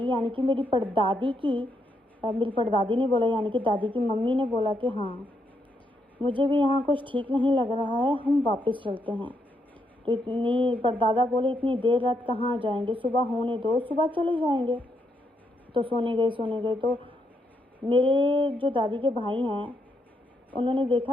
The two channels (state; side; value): normal; both; correlation 0.78